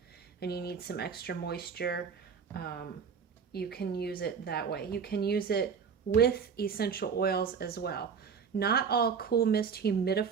and you need some extra moisture, you can use it that way. You can use it with essential oils as well. Not all cool mist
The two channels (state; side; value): quieter; left; 6.3 dB